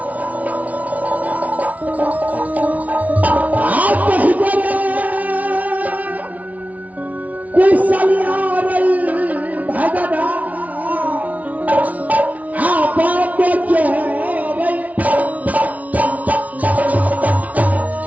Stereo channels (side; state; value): left; late; 0.070 ms